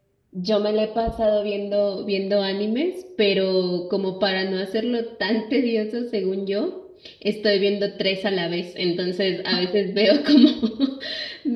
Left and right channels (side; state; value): both; identical; correlation 1.00